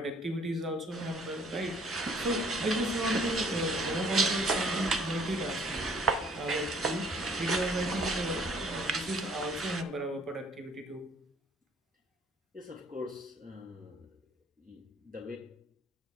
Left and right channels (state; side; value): normal; both; correlation 0.58